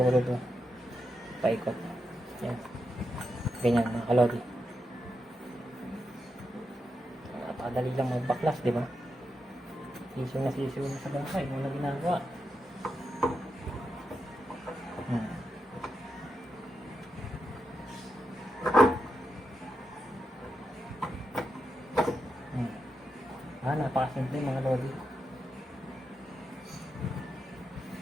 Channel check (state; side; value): normal; both; correlation 0.86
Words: doon. Paikot. Yan. Ganyan mga kalodi. Napakadali lang magbaklas, di ba? Sisiw na sa bangkay. Wala ginagawa. Napakasimple mga lodi.